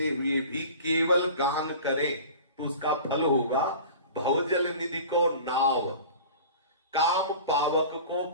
हुए भी केवल गान करें तो उसका फल होगा भवजल निधि को नाव, काम पावक को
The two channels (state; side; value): inverted; both; correlation -0.39